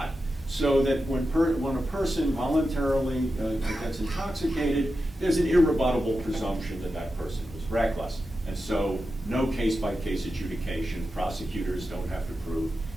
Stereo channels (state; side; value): normal; both; correlation 0.91